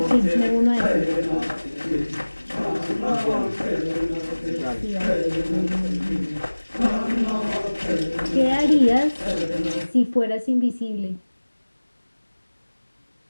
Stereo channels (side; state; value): both; inverted; correlation -1.00